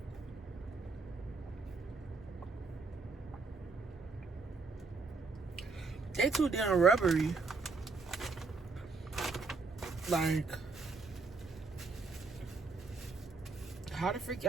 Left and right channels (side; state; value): left; quieter; 4.1 dB